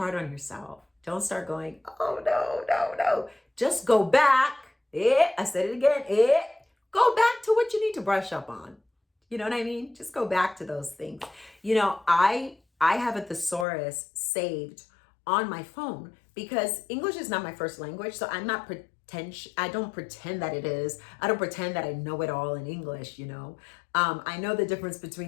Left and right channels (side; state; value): right; drops out; at 13.7 s